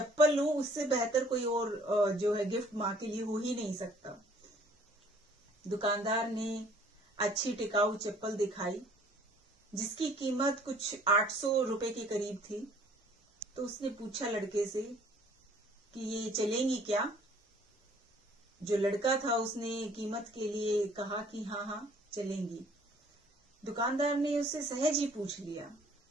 लूं, उससे बेहतर कोई और जो है गिफ्ट माँ के लिए हो ही नहीं सकता। दुकानदार ने अच्छी टिकाऊ चप्पल दिखाई, जिसकी कीमत कुछ 800 रुपए के करीब थी। तो उसने पूछा लड़के से कि ये चलेंगी क्या? जो लड़का था उसने कीमत के लिए कहा कि हाँ हाँ चलेंगी। दुकानदार ने उससे सहज ही पूछ लिया,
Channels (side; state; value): both; normal; correlation 0.57